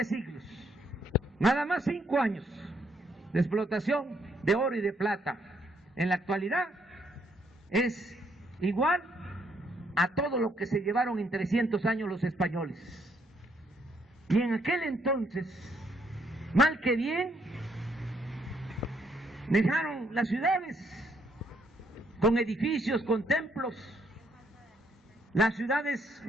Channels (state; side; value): normal; both; correlation 0.71